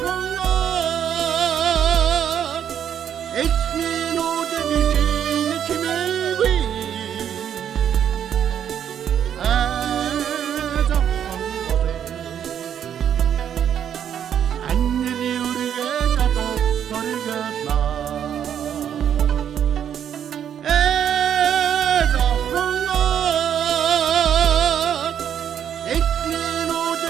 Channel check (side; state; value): left; quieter; 9.2 dB